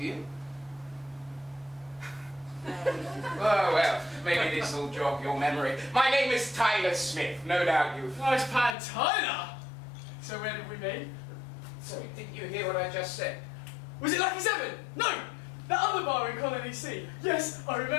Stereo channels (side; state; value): right; drops out; at 8.8 s